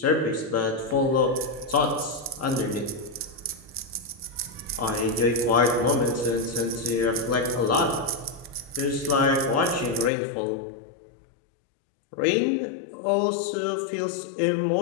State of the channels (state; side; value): drops out; right; at 10.1 s